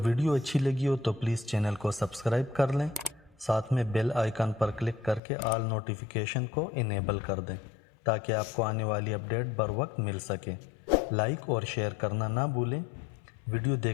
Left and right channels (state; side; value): drops out; right; at 5.2 s